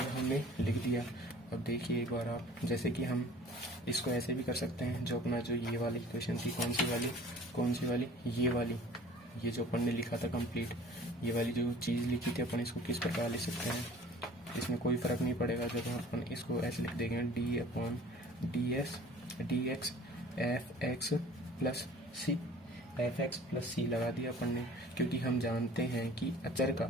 हमने लिख दिया। अब देखिए एक बार आप, जैसे कि हम इसको ऐसे भी कर सकते हैं, जो अपना जो ये वाली इक्वेशन थी, कौन सी वाली, ये वाली, ये जो अपन ने लिखा था कंप्लीट, ये वाली जो चीज़ लिखी थी अपन, इसको किस प्रकार लिख सकते हैं, इसमें कोई फ़र्क नहीं पड़ेगा। जब अपन इसको ऐसे लिख देंगे, d upon d x f x plus c लगा दिया अपन ने, क्योंकि हम जानते हैं कि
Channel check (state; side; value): normal; both; correlation 0.48